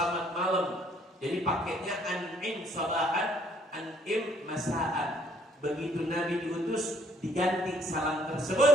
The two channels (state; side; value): normal; both; correlation 0.63